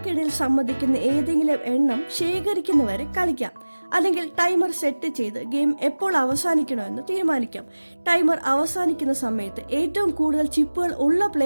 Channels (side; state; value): both; inverted; correlation -1.00